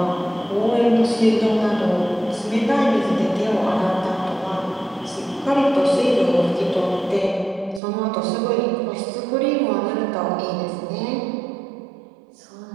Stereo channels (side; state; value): left; drops out; at 7.8 s